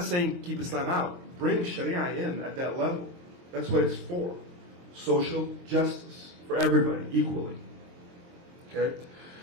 saying keep Islam out. Bring Sharia in at that level. That's what it's for. Social justice for everybody equally. Okay?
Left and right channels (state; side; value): late; left; 23 ms